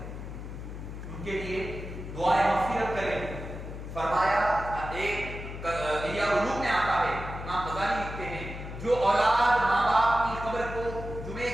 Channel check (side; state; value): left; noise; hum, 9 dB below the sound